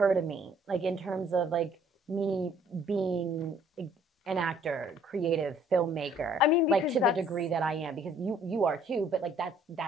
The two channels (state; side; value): normal; both; correlation 0.60